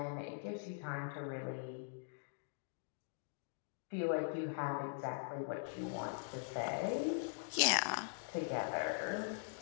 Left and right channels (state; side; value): silent; right; digital silence